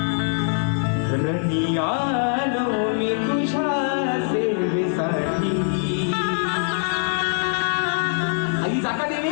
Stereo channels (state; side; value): silent; right; digital silence